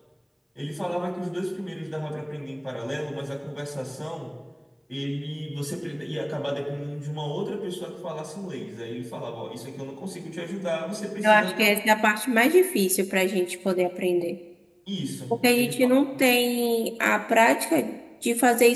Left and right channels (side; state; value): both; identical; correlation 1.00